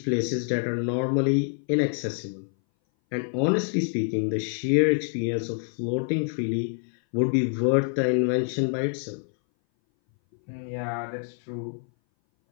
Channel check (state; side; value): silent; right; 59 dB below the other